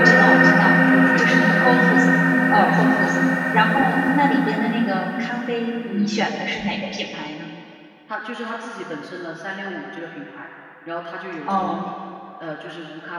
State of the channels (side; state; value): both; identical; correlation 1.00